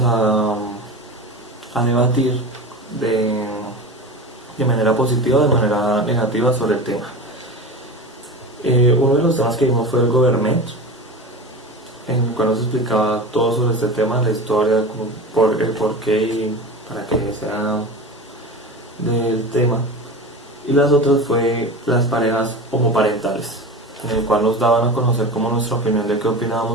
a debatir de manera positiva o de manera negativa sobre el tema. Uno de los temas que vimos fue el government, en el cual nos explicaba todo sobre este tema, la historia, el porqué y para qué sea del tema. Y las otras fue las parejas homoparentales, en el cual nos daban a conocer como nuestra opinión de qué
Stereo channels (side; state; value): both; normal; correlation 0.29